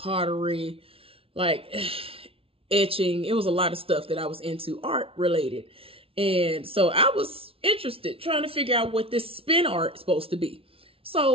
like etching. It was a lot of stuff that I was into art related. And so I was interested, trying to figure out what this spin art is supposed to be.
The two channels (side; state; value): left; late; 0.26 ms